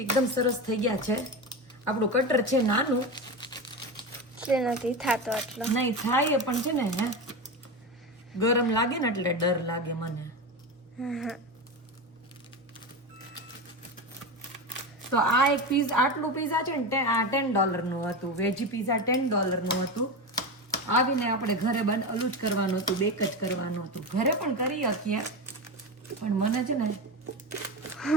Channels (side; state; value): both; normal; correlation 0.20